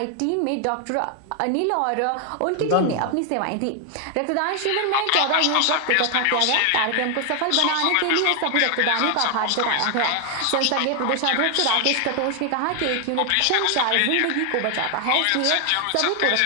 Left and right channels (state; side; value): different; both; correlation 0.00